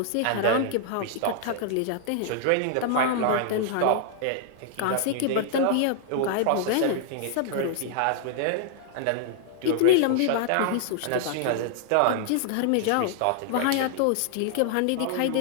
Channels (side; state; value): both; different; correlation -0.01